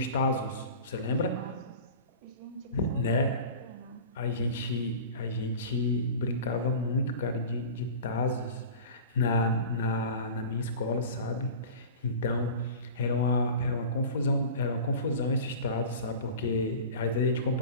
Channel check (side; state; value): both; inverted; correlation -0.36